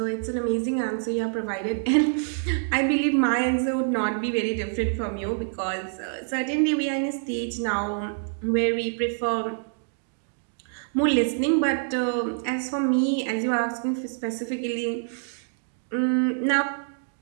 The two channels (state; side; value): silent; left; digital silence